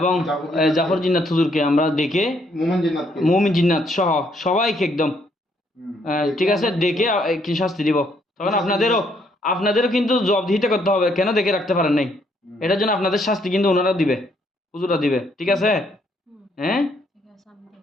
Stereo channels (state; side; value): normal; both; correlation 0.70